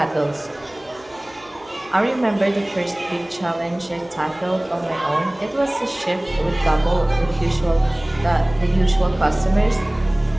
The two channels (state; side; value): noise; left; hum, 27 dB below the sound